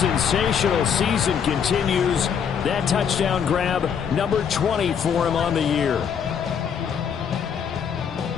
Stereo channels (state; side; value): quieter; right; 7.5 dB